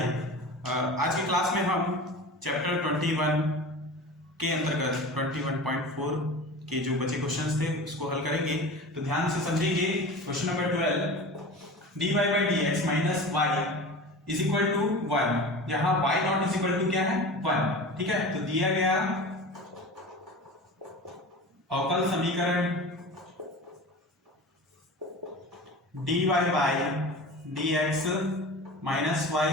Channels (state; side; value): normal; both; correlation 0.34